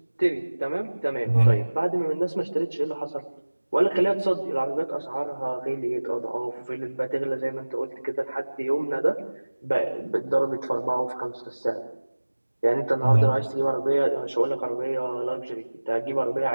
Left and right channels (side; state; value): both; inverted; correlation -1.00